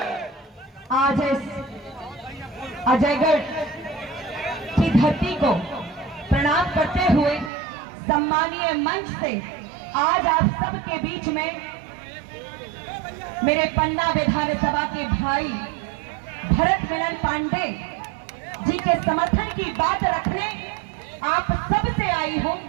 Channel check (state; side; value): drops out; left; at 7.5 s